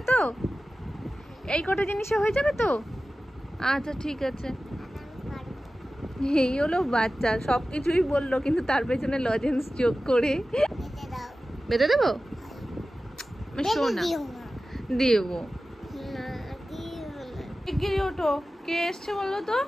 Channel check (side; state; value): both; normal; correlation 0.95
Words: তো, এই কটা জিনিসে হয়ে যাবে তো। আচ্ছা ঠিক আছে। এই হলো বাচ্চা, সবকিছুই বললো কিন্তু তার পেছনে লজেন্স যোগ করে। বেটে দাও। বেটে দেবো? শোনা দিও না। দেবো। না, দিও না। শিগগিরই ওঠো, কে এসছে বলো তো,